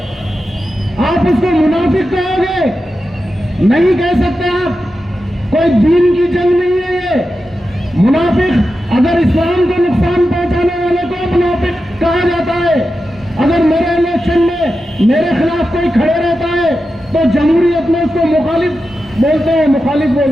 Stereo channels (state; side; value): normal; both; correlation 0.91